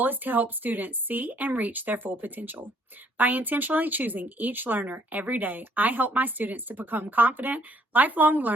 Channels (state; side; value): normal; both; correlation 0.64